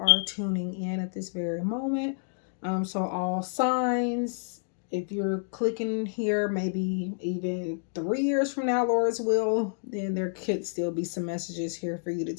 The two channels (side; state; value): right; silent; digital silence